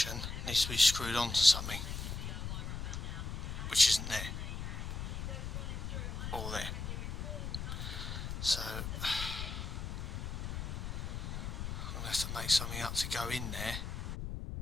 needs to be screwed onto something, which isn't there, or there. So I'm going to have to make something up to go in there.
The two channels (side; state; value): left; noise; rumble, 4 dB below the sound